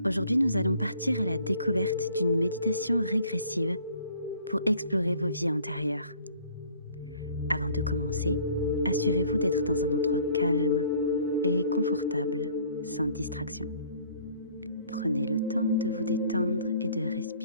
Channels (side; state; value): both; inverted; correlation -0.55